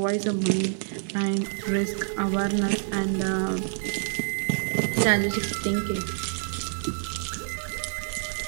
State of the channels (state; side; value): silent; left; 60 dB below the other